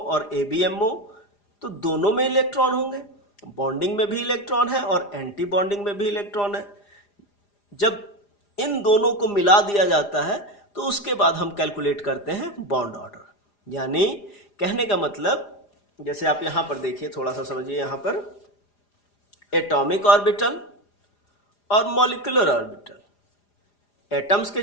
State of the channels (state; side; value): late; right; 4.9 ms